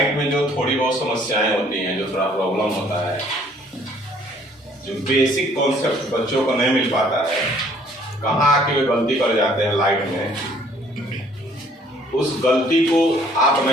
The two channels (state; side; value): normal; both; correlation 0.60